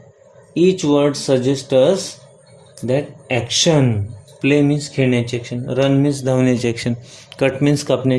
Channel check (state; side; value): identical; both; correlation 1.00